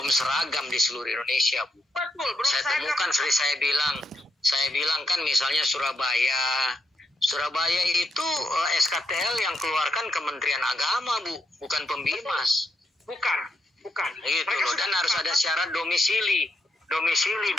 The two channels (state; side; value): normal; both; correlation 0.80